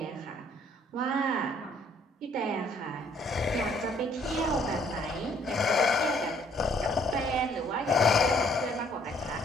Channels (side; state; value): both; normal; correlation 0.63